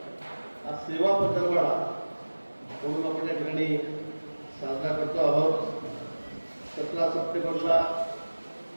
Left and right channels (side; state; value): both; inverted; correlation -1.00